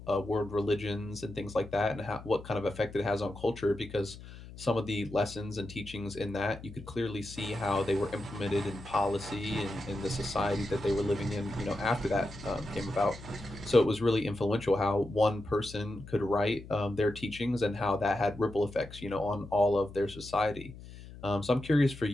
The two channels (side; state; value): left; noise; hum, 15 dB below the sound